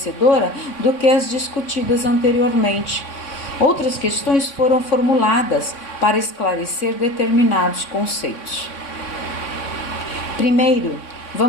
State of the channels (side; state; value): right; late; 3.6 ms